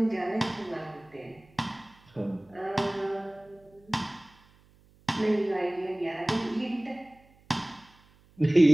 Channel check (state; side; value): noise; right; hum, 29 dB below the sound